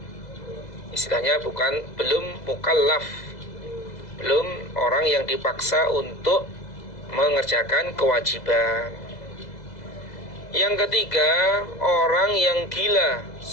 Istilahnya belum mukallaf, belum orang yang dipaksa untuk mengerjakan kewajiban. Yang ketiga, orang yang gila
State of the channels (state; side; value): late; right; 2.0 ms